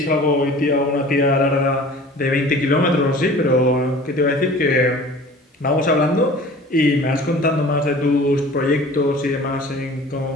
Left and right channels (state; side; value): normal; both; correlation 0.44